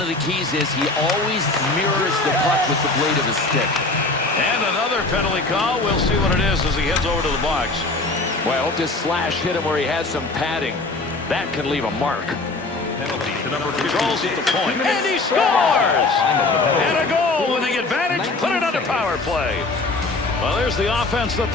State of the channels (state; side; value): quieter; right; 3.2 dB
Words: the keys is he always mirrors the puck with the blade of his stick. And another penalty call. We'll see what it is as he heads over to the box. Well, I hope this slash hit him where he had some padding. That could leave a mark. Penalty to number Controls 56. at the point. And he scores! And a goal with the advantage. Put it under power play. Well, there's the offense that